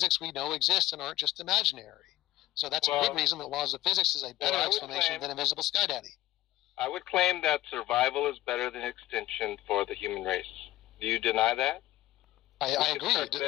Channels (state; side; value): quieter; right; 15.7 dB